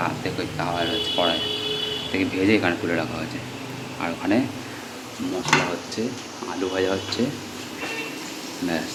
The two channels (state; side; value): identical; both; correlation 1.00